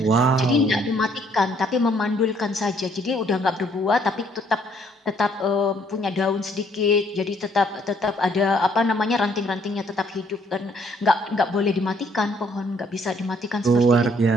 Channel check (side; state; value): both; normal; correlation 0.65